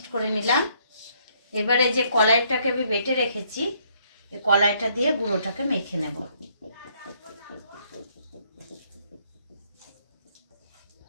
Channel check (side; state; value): both; inverted; correlation -0.68